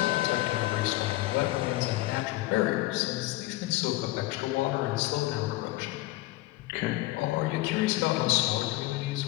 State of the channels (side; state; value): right; quieter; 18.4 dB